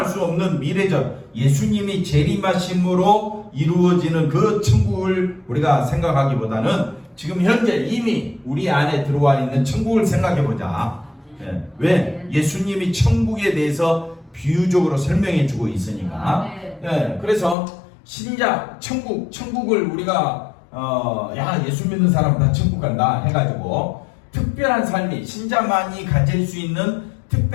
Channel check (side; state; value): right; drops out; at 17.6 s